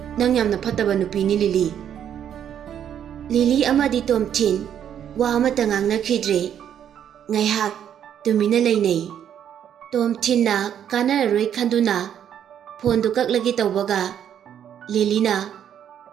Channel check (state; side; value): quieter; left; 9.4 dB